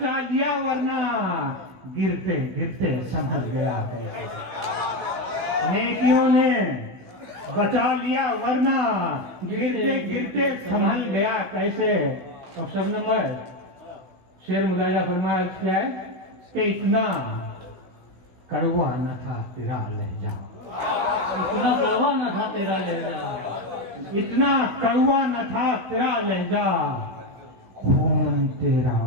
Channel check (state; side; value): late; left; 16 ms